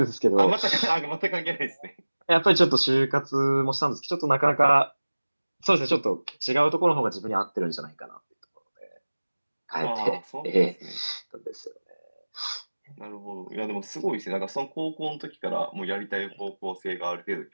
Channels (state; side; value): inverted; both; correlation -1.00